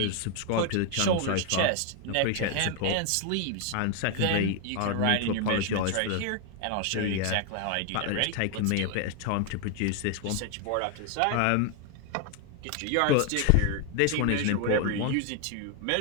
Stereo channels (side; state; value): both; different; correlation 0.01